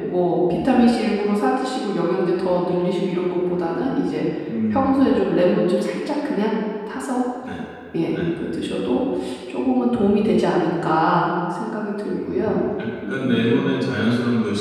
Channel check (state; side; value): identical; both; correlation 1.00